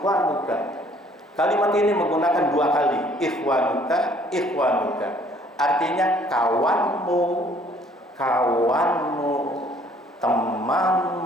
Kalimat ini menggunakan dua kali, ikhwanuka. Artinya kawanmu,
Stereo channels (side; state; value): both; normal; correlation 0.59